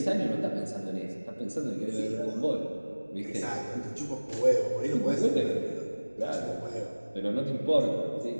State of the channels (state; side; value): inverted; both; correlation -1.00